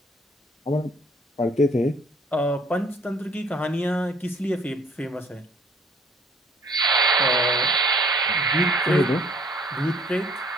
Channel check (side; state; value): both; normal; correlation 0.57